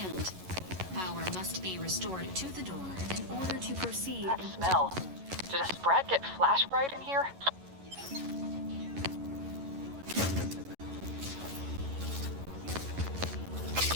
Power must be restored to the door in order to proceed. That smell. Did a sprat get flash fried in here?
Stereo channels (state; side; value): late; left; 11 ms